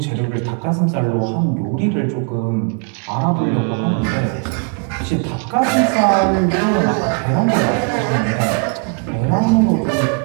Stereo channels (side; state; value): left; quieter; 34.9 dB